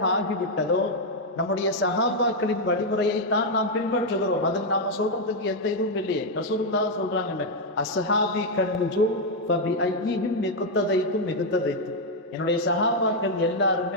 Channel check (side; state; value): both; normal; correlation 0.00